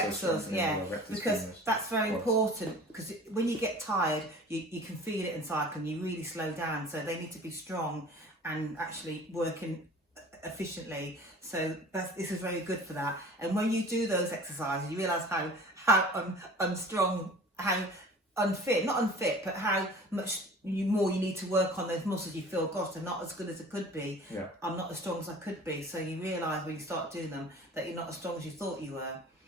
yeah. Because femurs. that's very important. Because when you get tired, you can feel it in cycling. You really slow down, so they need to be strong and actually working efficiently. So this is very good for that. And when you do those exercises, you realise how unstrong, how not unfit, but how much more you need to work on those muscles. You feel, gosh, they're not as good as it could be. Yeah. I'm not as strong as I could be. So you realise when you start doing them that you're not as strong as you thought you were.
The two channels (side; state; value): both; normal; correlation 0.43